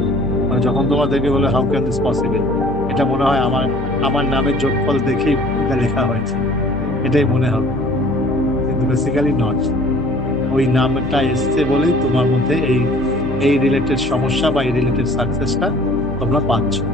মানে যখন তোমার দেখে বলে হাউ ক্যান দিস পসিবল, এটা মনে হয় আমার নামের যোগফল দেখেই এটা লেখা হয়েছে, এটাই মনে হবে, কিন্তু বেসিক্যালি নট। ওই নামটা এসছে বলেই তোমার মধ্যে এই রিলেটেড সমস্যা বা এই রিলেটেড সাকসেসটা তোমরা পাচ্ছ।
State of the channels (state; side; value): normal; both; correlation 0.51